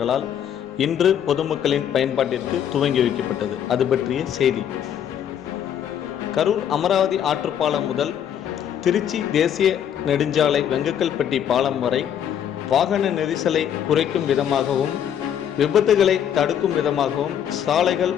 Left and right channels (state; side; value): quieter; right; 9.4 dB